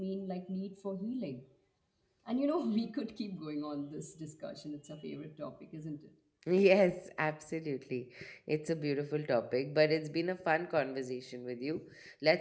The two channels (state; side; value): identical; both; correlation 1.00